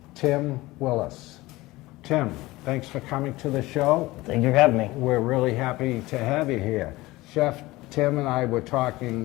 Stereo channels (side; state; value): right; quieter; 19.5 dB